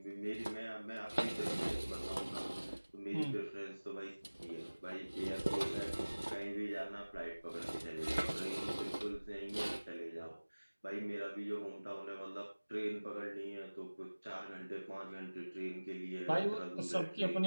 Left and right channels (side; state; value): both; inverted; correlation -1.00